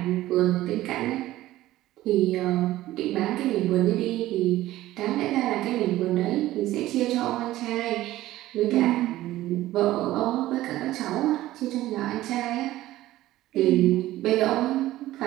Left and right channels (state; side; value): quieter; left; 15.5 dB